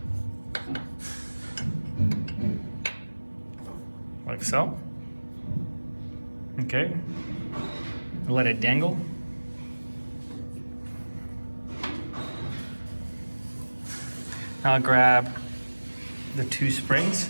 Like so. Okay. Let it dangle. Now grab the two springs.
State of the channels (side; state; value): both; inverted; correlation -1.00